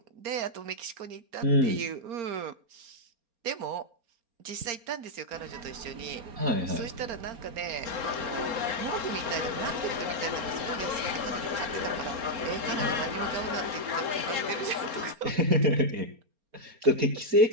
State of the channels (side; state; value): left; late; 4.3 ms